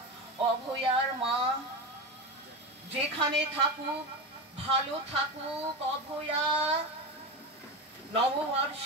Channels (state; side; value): normal; both; correlation 0.20